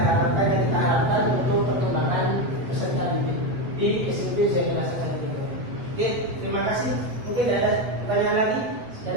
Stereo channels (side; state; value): left; late; 8.0 ms